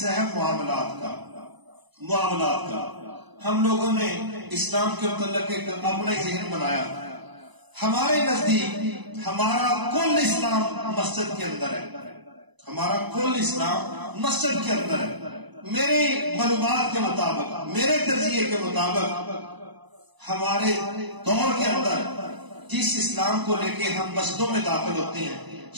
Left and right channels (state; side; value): late; left; 1.0 ms